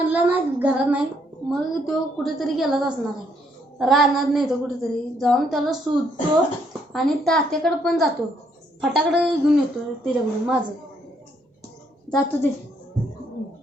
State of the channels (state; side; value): normal; both; correlation 0.71